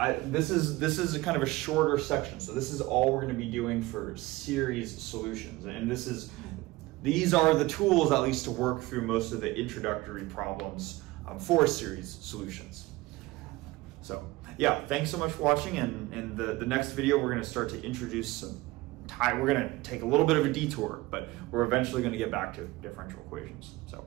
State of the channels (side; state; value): left; quieter; 19.8 dB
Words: this is a kind of a shorter section. So this is all we're going to be doing for series solutions. And these are the tools, at least, to work through most of the introductory problems for series solutions. So yeah, thanks so much for watching. And in the next video, we're going to start to introduce we're going to take a little bit of a detour, but we're eventually going to get back to differential equations.